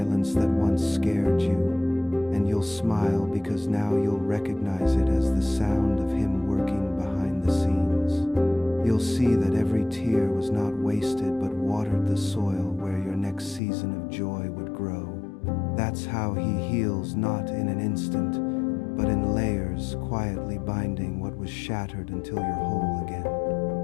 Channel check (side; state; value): right; drops out; at 13.6 s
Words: that once scared you, and you'll smile because now you'll recognize it as the sound of Him working behind the scenes. You'll see that every tear was not wasted but watered the soil where your next season of joy would grow. That's how He heals, not in an instant, but in layers, quietly binding what was shattered until you're whole again.